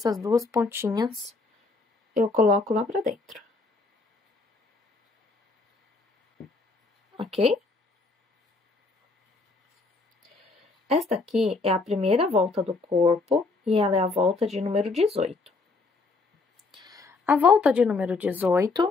duas pontinhas eu coloco lá pra dentro. Ok? Esta aqui é a primeira volta do corpo e ela é a volta de número 18. A volta de número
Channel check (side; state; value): right; quieter; 3.7 dB